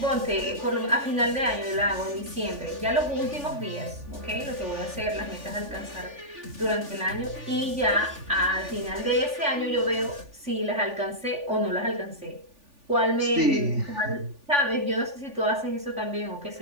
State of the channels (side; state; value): left; late; 3.4 ms